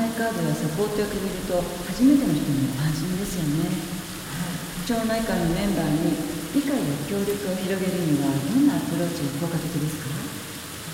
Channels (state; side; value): identical; both; correlation 1.00